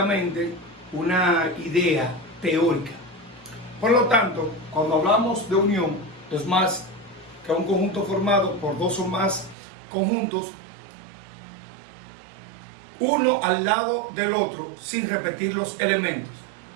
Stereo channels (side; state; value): left; drops out; at 9.6 s